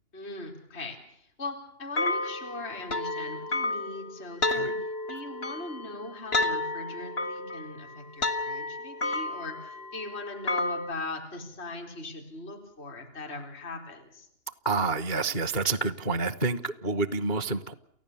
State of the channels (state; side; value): late; right; 2.8 ms